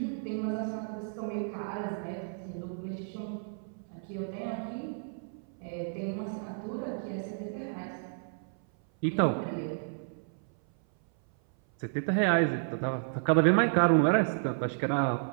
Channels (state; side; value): silent; left; 57 dB below the other